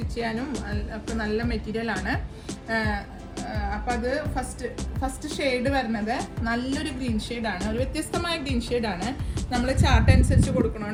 ചെയ്യാനും ഒക്കെ നല്ല മെറ്റീരിയൽ ആണ്. അപ്പം അത് ഫസ്റ്റ് ഷെയ്ഡ് വരുന്നത് നല്ലൊരു ഗ്രീൻ ഷെയ്ഡാണ്. ഒരു വ്യത്യസ്തമായ ഗ്രീൻ ഷെയ്ഡാണ്. നമ്മൾ ചാർട്ട് അനുസരിച്ച്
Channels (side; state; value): both; identical; correlation 1.00